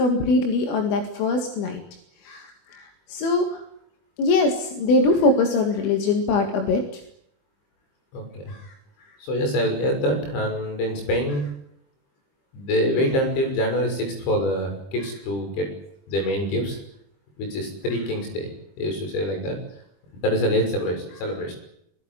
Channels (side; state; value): right; late; 21 ms